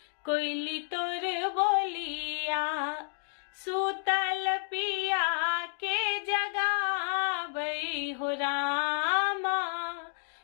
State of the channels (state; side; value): silent; right; digital silence